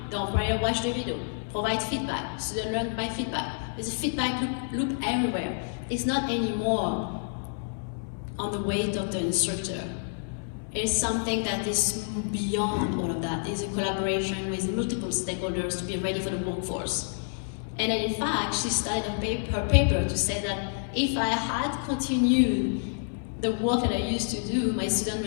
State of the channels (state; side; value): silent; right; 59 dB below the other